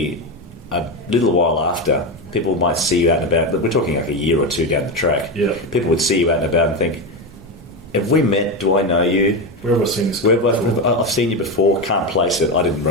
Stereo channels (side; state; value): both; normal; correlation 0.15